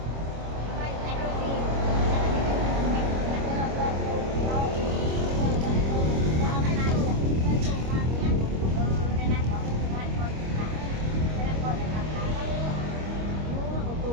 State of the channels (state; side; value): late; left; 25 ms